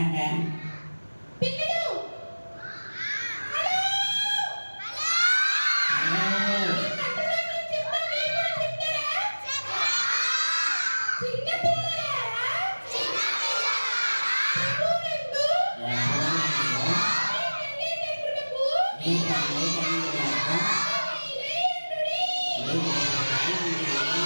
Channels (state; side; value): inverted; both; correlation -1.00